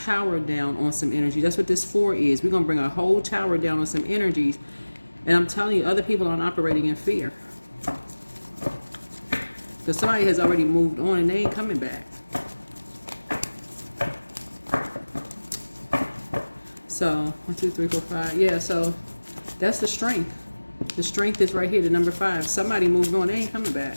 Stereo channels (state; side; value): inverted; both; correlation -1.00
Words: down on some energy. That's what this 4 is. We're going to bring a whole tower down on some energies. And I'm telling you, other people aren't operating in fear. Because somebody has already moved on and they ain't coming back. So 1, 2, 3, 4, 5. Yeah, so that's the strength. The strength is right here, the number 5. Somebody moved on, they ain't coming back.